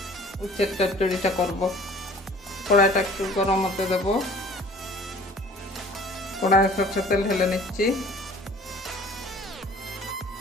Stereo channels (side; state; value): both; normal; correlation 0.49